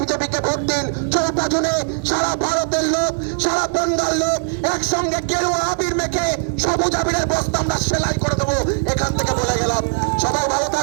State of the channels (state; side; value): silent; left; 66 dB below the other